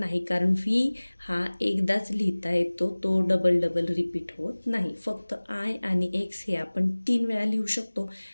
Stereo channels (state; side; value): inverted; both; correlation -1.00